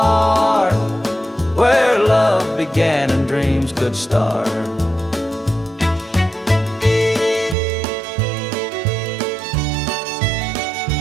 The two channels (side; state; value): left; drops out; at 7.6 s